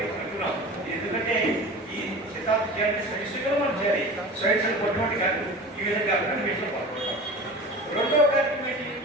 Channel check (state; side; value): normal; both; correlation 0.35